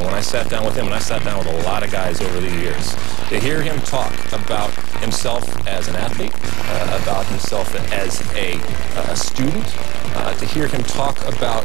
When I sat down with him, and I sat down with a lot of guys over the years, to hear him talk about himself as an athlete, about himself as a student, to hear him talk about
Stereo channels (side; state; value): left; quieter; 19.1 dB